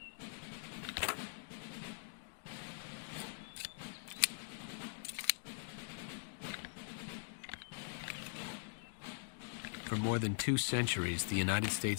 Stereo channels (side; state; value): right; silent; digital silence